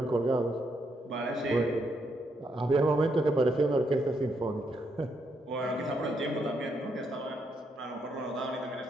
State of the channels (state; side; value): normal; both; correlation 0.77